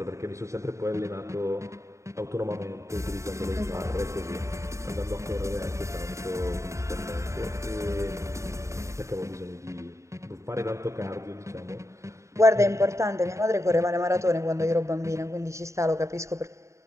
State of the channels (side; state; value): left; late; 0.14 ms